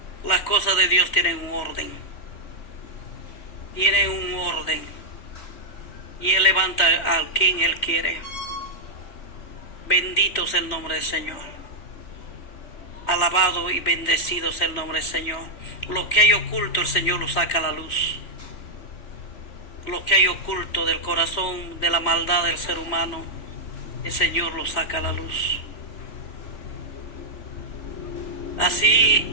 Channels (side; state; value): right; late; 3.2 ms